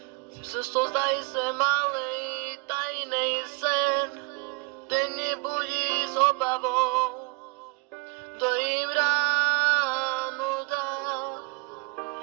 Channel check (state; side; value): quieter; left; 29.8 dB